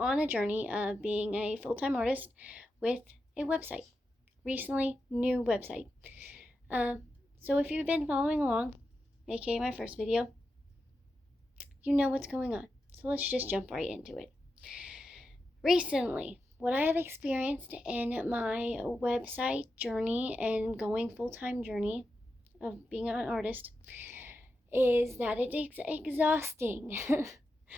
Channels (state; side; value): normal; both; correlation 0.89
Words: a journey of being a full-time artist with a website. Recently, new website. So if you've been following along, aka my first video, you know what's going on. So let's just jump right into it. Recently, what I have experienced in my website journey and going full-time journey of being an artist is that it is exhausting.